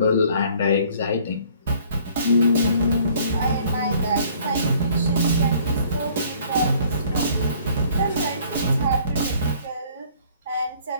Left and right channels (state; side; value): inverted; both; correlation -0.58